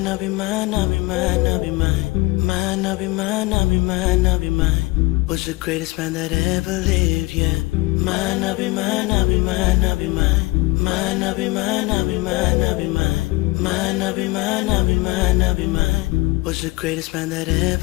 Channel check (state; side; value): quieter; right; 21.7 dB